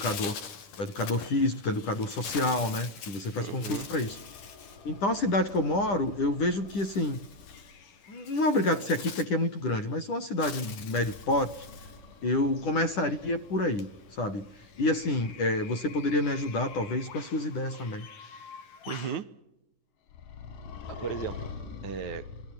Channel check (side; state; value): right; late; 10 ms